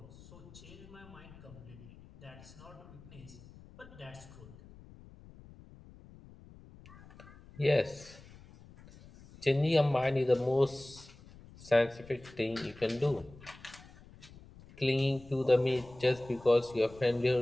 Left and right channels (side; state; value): left; noise; rumble, 21 dB below the sound